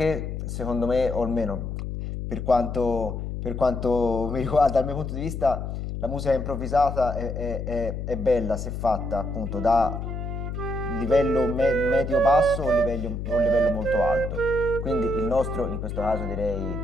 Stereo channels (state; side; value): noise; left; hum, 5 dB below the sound